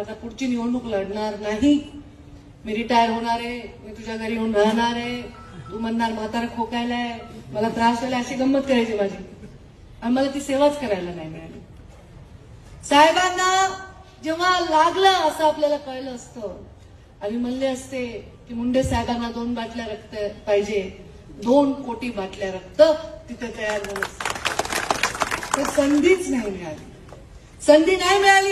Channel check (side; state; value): both; identical; correlation 1.00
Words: पुढची निवडणूक लढणार नाही, मी रिटायर होणार आहे, मी तुझ्या घरी येऊन राहणार आहे, तू म्हणणार म्हातारा खोकायलाय, मला त्रास झाला, अशी गंमत करायची माझी. आणि मला ती सेवाच करायला नाही मिळाली. साहेबांना जेव्हा लागलं असं आपल्याला कळलं असतं आणि म्हणले असते की मुंडे साहेबांना 2 बाटल्या रक्त पाहिजे, 2 कोटी बाटल्या रक्त तिथे तयार झालं असतं. तर संधीच नाही मिळाली, संधी नाही